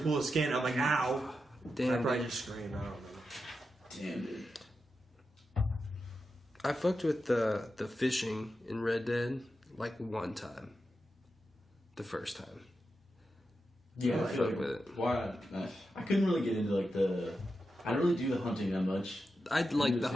pull the skin. I'm like, ow. I Damn. probably dude. just screamed. I don't know. Damn, dude. I fucked with the fishing in Red Dead like one time. The first time. Yeah, I I feel fuck like, with it. why? I couldn't really get into like the. I don't really do the hunting that much. I'd like do the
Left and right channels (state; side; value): normal; both; correlation 0.89